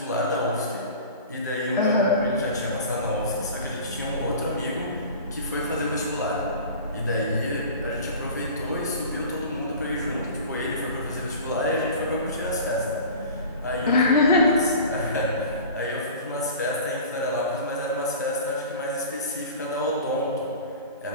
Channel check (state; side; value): inverted; both; correlation -0.38